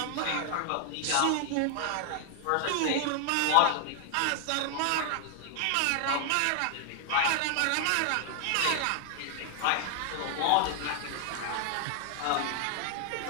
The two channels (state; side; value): different; both; correlation 0.00